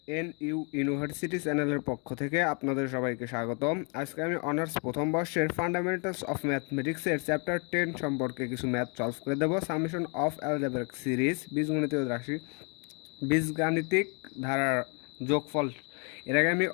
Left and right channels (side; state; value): right; quieter; 35.4 dB